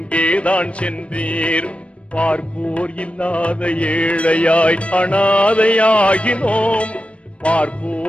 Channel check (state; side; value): late; right; 0.061 ms